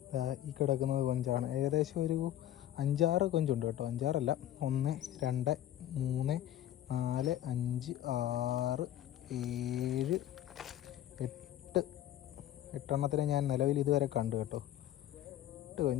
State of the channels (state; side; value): quieter; right; 12.4 dB